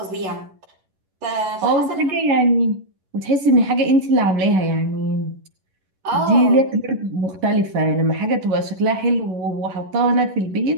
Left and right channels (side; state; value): left; late; 11 ms